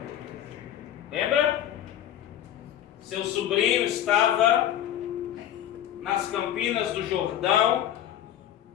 Lembra? Seu sobrinho estava nas campinas do Jordão,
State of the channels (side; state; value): right; quieter; 11.2 dB